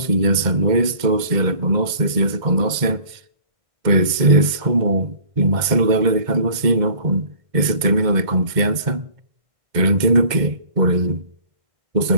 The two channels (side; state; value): left; late; 2.1 ms